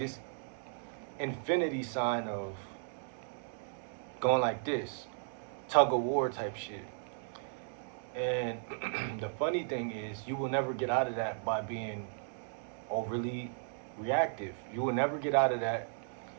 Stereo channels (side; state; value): left; silent; digital silence